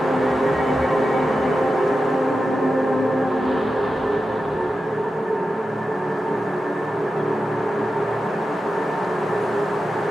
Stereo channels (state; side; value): normal; both; correlation 0.91